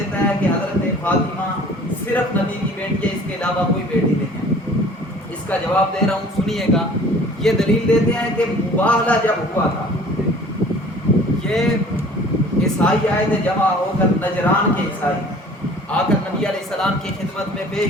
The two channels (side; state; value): both; normal; correlation 0.49